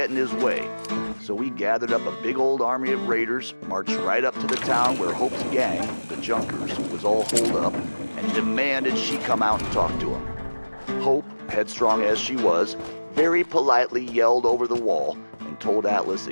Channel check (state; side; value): inverted; both; correlation -1.00